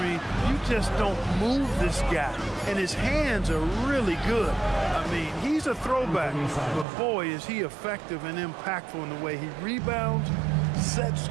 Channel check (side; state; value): left; drops out; at 6.9 s